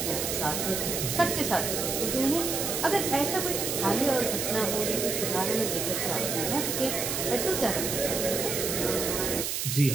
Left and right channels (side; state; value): right; noise; hiss, 1 dB below the sound